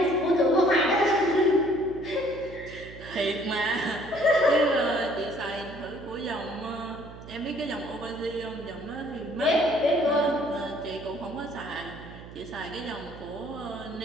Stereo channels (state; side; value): noise; right; hum, 15 dB below the sound